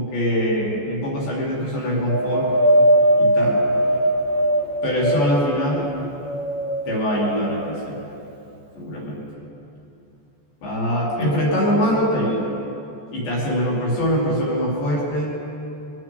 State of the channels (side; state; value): right; late; 14 ms